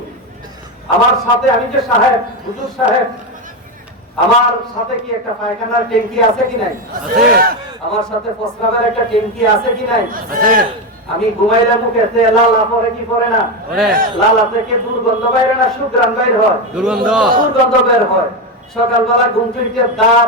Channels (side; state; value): both; normal; correlation 0.12